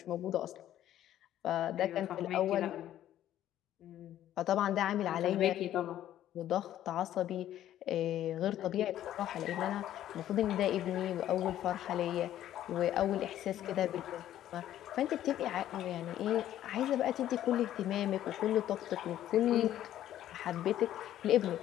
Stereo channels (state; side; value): quieter; right; 12.2 dB